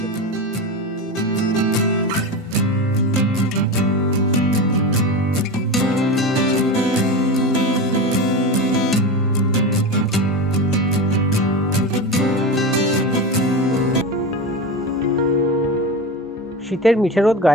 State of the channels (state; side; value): normal; both; correlation 0.23